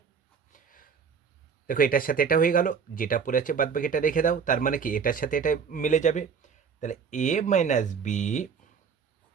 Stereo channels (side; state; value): left; quieter; 6.4 dB